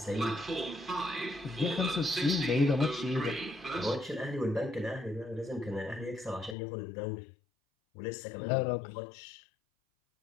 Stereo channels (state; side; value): drops out; right; at 6.6 s